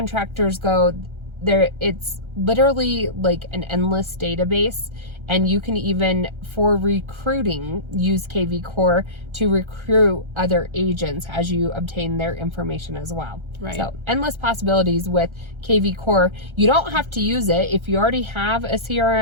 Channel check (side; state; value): left; late; 1.3 ms